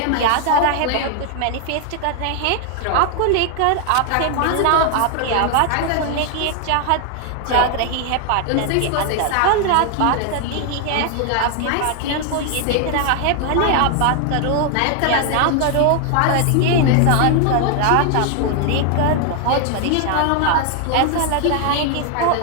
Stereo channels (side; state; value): both; different; correlation 0.00